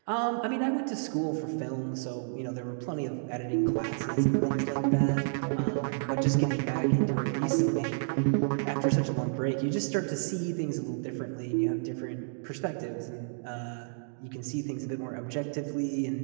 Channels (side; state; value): left; silent; digital silence